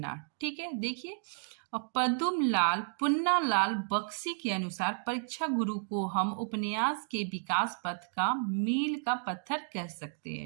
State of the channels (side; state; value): left; silent; digital silence